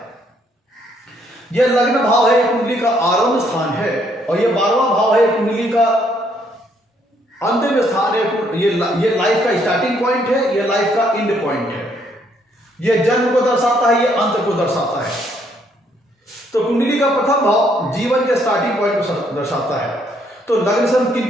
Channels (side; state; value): both; normal; correlation 0.69